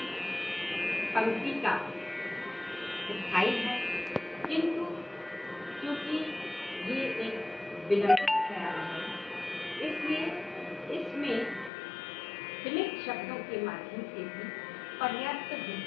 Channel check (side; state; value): right; drops out; at 11.7 s